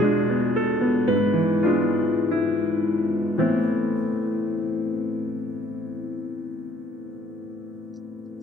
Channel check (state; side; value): normal; both; correlation 0.62